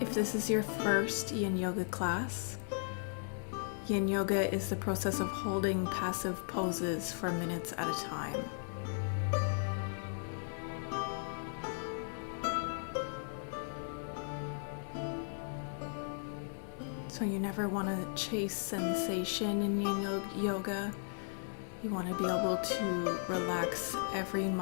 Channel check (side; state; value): right; silent; digital silence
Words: this is your first Yin Yoga class, Yin Yoga is the process of holding passive poses for minutes at a time. So you never want to chase sensation in Yin Yoga. You want to be able to relax every